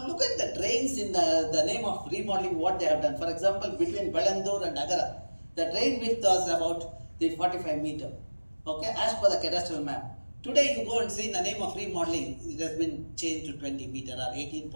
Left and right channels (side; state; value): both; inverted; correlation -1.00